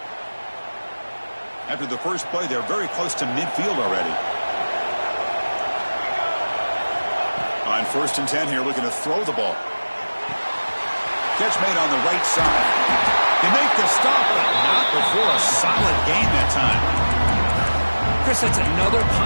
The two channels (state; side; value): inverted; both; correlation -1.00